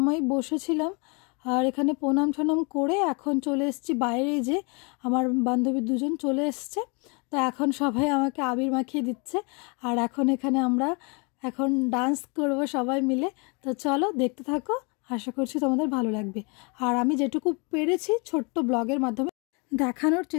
বসেছিলাম, আর এখানে প্রণাম টনাম করে এখন চলে এসেছি বাইরে। যে আমার বান্ধবী দুজন চলে এসছে, তো এখন সবাই আমাকে আবির মাখিয়ে দিচ্ছে। আর এখানে আমরা ডান্স করব সবাই মিলে। তো চলো দেখতে থাকো, আশা করছি তোমাদের ভালো লাগবে। আর আমি যেটুকু পেরেছি ছোট্ট ব্লগের মাধ্যমে দেখানোর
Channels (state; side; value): quieter; right; 32.5 dB